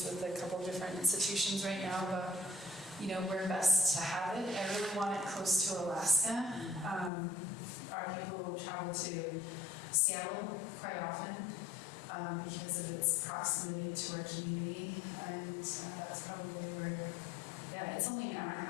with a couple different institutions right now, but where best to have it. I really want it close to Alaska. Our people travel to Seattle quite often because of its proximity to our community, and that's probably where, it's only an hour and a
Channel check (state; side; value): drops out; right; at 7.1 s